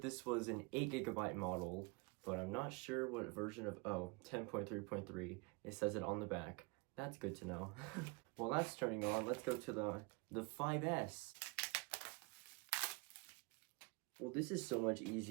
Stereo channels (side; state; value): left; quieter; 28.6 dB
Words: this was an 8GB model, but I'm not sure what version of, 10.3.3. It says it on the back. That's good to know. Well, that's turning on. Let's go to the 5S. Well, this is so much